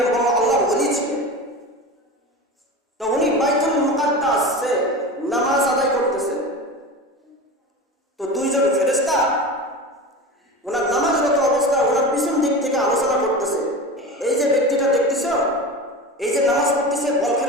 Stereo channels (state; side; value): normal; both; correlation 0.29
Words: আল্লাহর ওলি ছিলেন। তো উনি বাইতুল মুকাদ্দাসে নামাজ আদায় করতেছেন। তো দুইজন ফেরেশতা ওনার নামাজরত অবস্থা ওনার পিছন দিক থেকে আলোচনা করতেছে। এই যে ব্যক্তিটা দেখতেছ, এই যে নামাজ পড়তেছে,